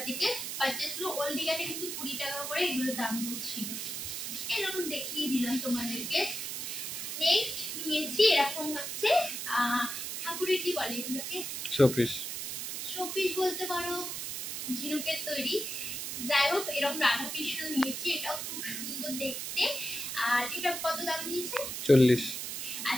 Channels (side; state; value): right; noise; hiss, 4 dB below the sound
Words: থেকে পারচেস হলো। ওল্ড দীঘাতে কিন্তু 20 টাকা করে এগুলো দাম ছিল। এরকম দেখিয়ে দিলাম তোমাদেরকে। নেক্সট নিয়েছি এরকম হচ্ছে ঠাকুরের কি বলে এগুলোকে, শোপিস। শোপিস বলতে পারো, ঝিনুকের তৈরি। যাই হোক, এরকম রাধা কৃষ্ণ নিয়েছি, এটাও খুব সুন্দর দেখতে। আর এটা কত দাম নিয়েছে? 40।